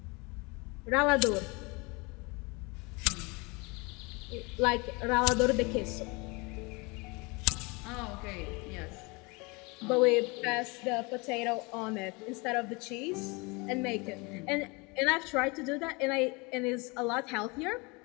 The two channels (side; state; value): right; quieter; 27.6 dB